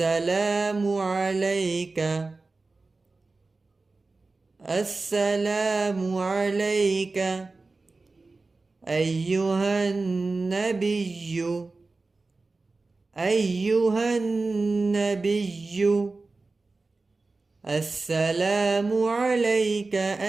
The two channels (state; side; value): quieter; left; 3.6 dB